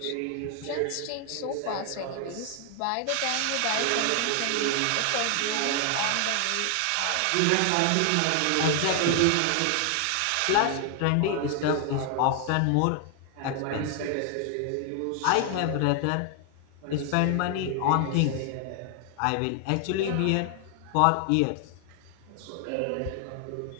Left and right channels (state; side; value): different; both; correlation 0.00